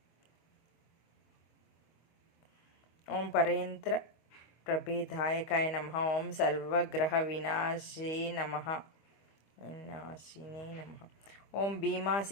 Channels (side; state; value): right; late; 25 ms